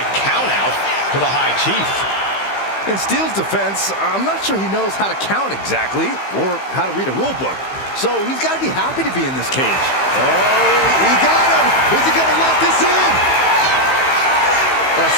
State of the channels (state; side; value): late; right; 15 ms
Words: countout to the High Chief. In Steel's defense, I'm not sure he knows how to count exactly or how to read a rule book. So he's got to be happy to be in this cage. Oh, he got him. Is he going to lock this in? A